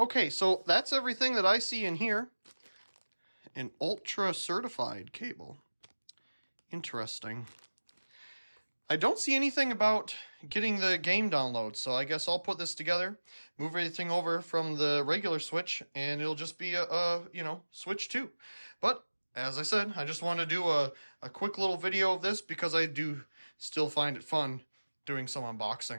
so that's everything that I see in here. An ultra certified cable. Interesting. I don't see anything about getting the game download, so I guess I'll put this together, move everything over from the regular Switch, and it'll just be a you know, Switch 2. But as I said, I just want to do a quick little video of this because I do still find it fun doing some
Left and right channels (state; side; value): inverted; both; correlation -1.00